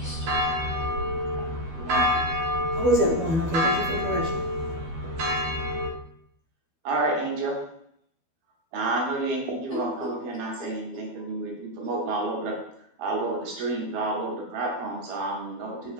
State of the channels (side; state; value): left; late; 12 ms